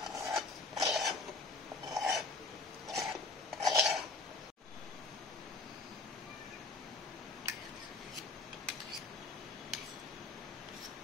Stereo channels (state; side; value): quieter; right; 3.7 dB